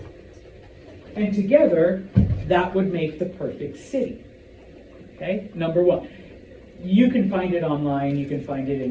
and together, that would make the perfect city. Okay, number one. You can find it online, you can find it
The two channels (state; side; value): identical; both; correlation 1.00